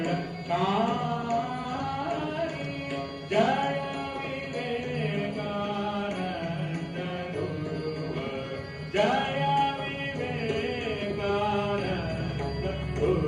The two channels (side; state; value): both; identical; correlation 1.00